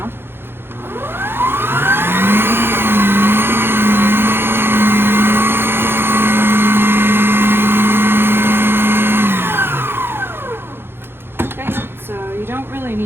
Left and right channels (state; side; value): late; left; 0.11 ms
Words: Okay, so you don't really